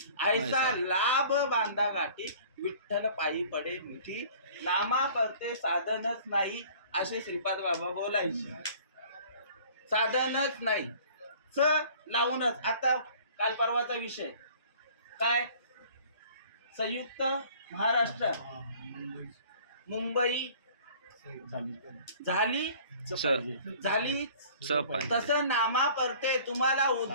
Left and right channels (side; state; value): both; inverted; correlation -0.50